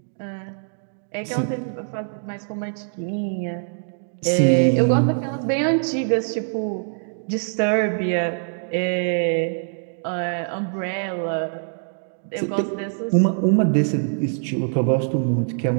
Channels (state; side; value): silent; left; digital silence